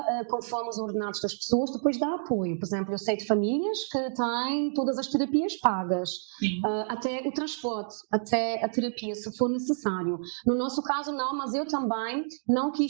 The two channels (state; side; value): silent; left; digital silence